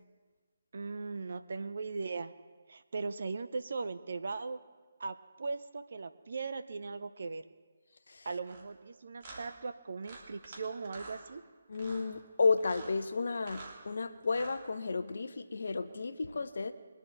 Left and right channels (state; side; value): inverted; both; correlation -0.89